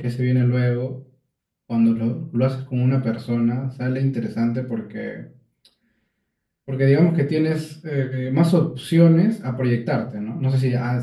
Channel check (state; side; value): identical; both; correlation 1.00